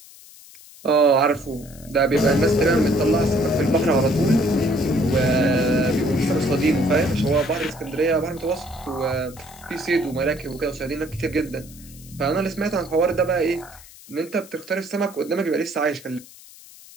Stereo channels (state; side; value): noise; left; hiss, 21 dB below the sound